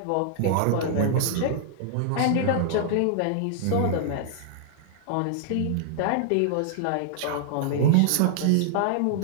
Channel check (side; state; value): both; different; correlation -0.01